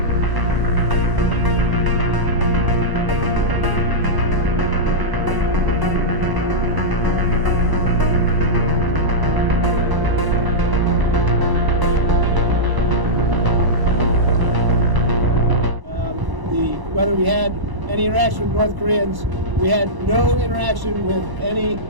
Whether we had any interaction with North Koreans, we had no interaction with any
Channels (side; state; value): left; late; 1.0 ms